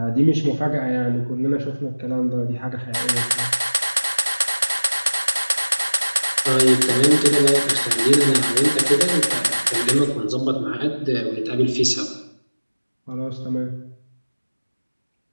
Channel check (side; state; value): both; inverted; correlation -1.00